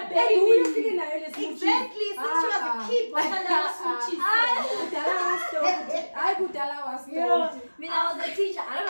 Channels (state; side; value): inverted; both; correlation -1.00